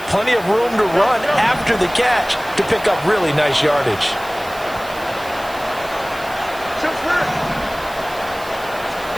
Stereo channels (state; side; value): noise; right; hiss, 19 dB below the sound